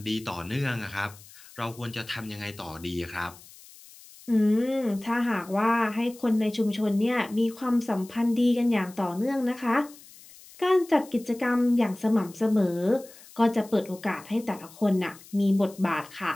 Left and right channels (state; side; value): noise; left; hiss, 21 dB below the sound